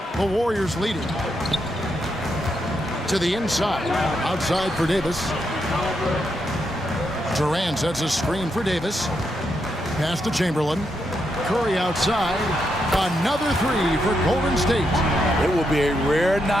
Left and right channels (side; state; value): both; normal; correlation 0.82